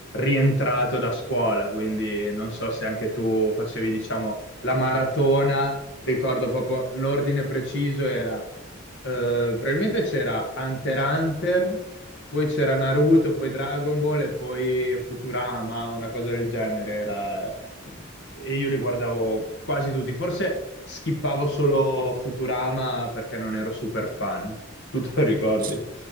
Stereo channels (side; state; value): both; normal; correlation 0.32